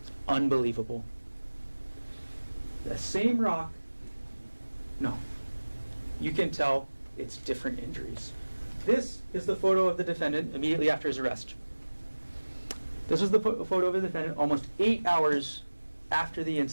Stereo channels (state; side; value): inverted; both; correlation -1.00